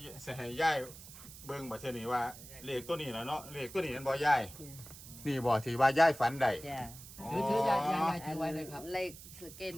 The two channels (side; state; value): right; noise; hiss, 16 dB below the sound